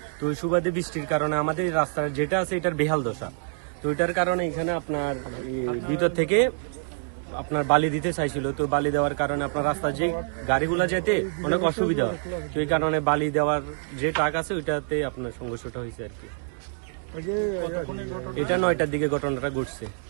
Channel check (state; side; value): silent; left; digital silence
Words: তো ওই সুবাদে বৃষ্টির কারণে আমাদের রাস্তার যেটা আছে এটার বেহাল দশা। তো এটার কারণে এখানে আপনার ভিতর থেকে আপনার বালি দিতে চাইছিল, তো বালি দেওয়ার কারণে আপনার রাস্তা যে গাড়িগুলা যেতে অনেক অসুবিধা হয়, তো এই কারণে বালি দেওয়ার যে ট্রাক আছে ওইটাতে আপনার সংঘর্ষটা হয়েছে আর কি। এটা 9টার দিকে ঘটনাটা ঘটছে।